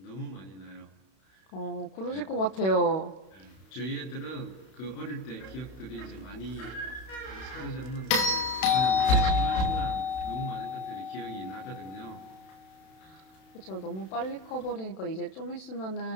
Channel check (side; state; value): right; late; 32 ms